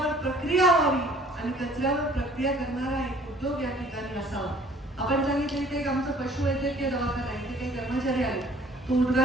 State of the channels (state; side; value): normal; both; correlation 0.55